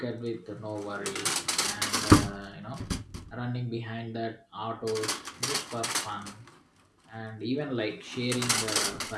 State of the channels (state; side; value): identical; both; correlation 1.00